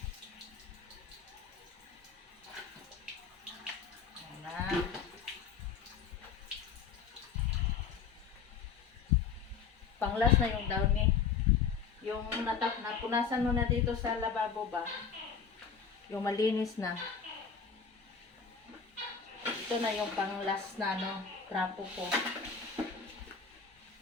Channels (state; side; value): quieter; right; 6.1 dB